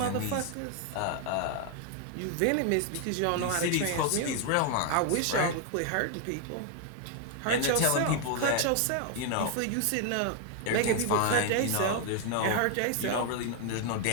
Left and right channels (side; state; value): both; different; correlation 0.00